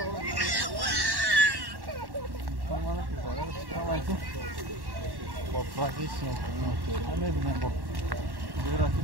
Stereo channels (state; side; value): late; left; 1.1 ms